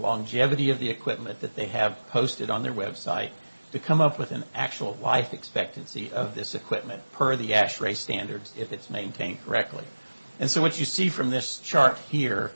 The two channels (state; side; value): inverted; both; correlation -1.00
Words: of the equipment that they have posted on their website to come up with an actual life expectancy of this equipment per the ASHRAE standards if it's maintained correctly. And so what you see from this chart here,